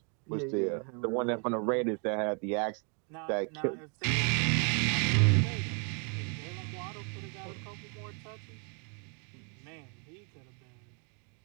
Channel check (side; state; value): left; quieter; 37.7 dB